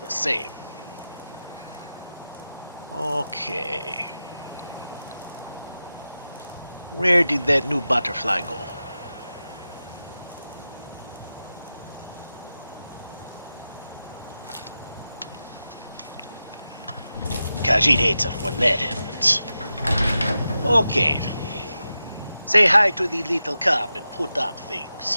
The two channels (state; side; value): inverted; both; correlation -0.92